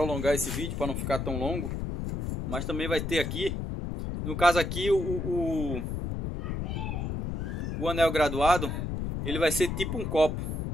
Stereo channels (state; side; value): noise; left; rumble, 3 dB below the sound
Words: esse vídeo para não ficar tão longo, mas também vai ter aqui, no caso aqui, o anel graduado, ele vai ser tipo um copo.